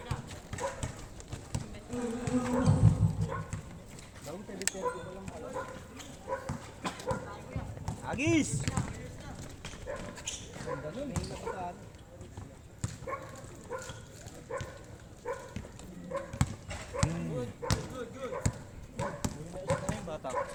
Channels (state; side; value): identical; both; correlation 1.00